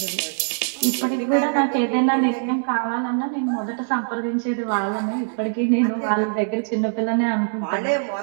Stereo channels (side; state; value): left; silent; 64 dB below the other